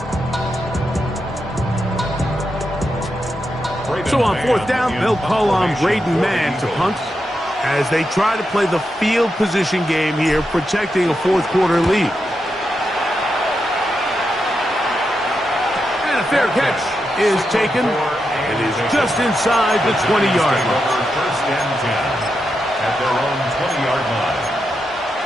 So on 4th down, they'll call on Braden Mann to punt as they try to play the field position game here, protecting a 4th quarter lead. And a fair catch is taken. It is just inside the 20-yard line. 1st and 10 at their own 20-yard line.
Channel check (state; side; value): normal; both; correlation 0.86